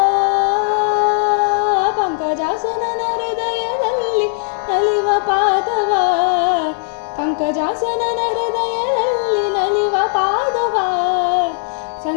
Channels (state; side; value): silent; right; digital silence